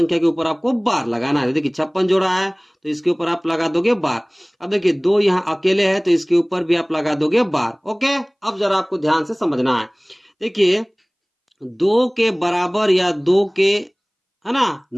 के ऊपर आपको बार लगाना है। देखिए 56 जोड़ा है तो इसके ऊपर आप लगा दोगे बार। अब देखिए 2 यहाँ अकेले है तो इसके ऊपर भी आप लगा दोगे बार। ओके, अब जरा आपको ध्यान से समझना है। देखिए 2 के बराबर या 2 के है ना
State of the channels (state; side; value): identical; both; correlation 1.00